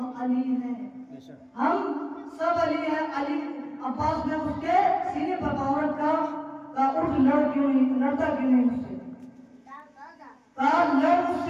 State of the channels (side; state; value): both; identical; correlation 1.00